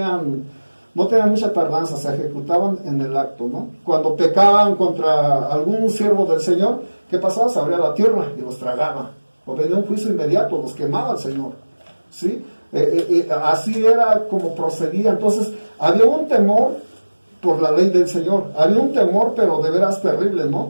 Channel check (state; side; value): inverted; both; correlation -1.00